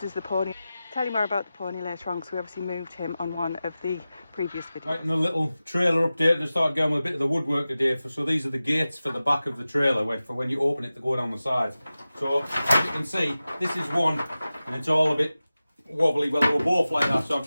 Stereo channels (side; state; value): both; inverted; correlation -0.95